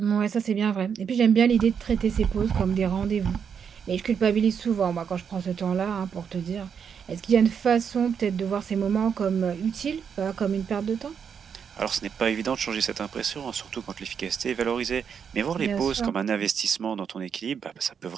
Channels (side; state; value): left; quieter; 7.1 dB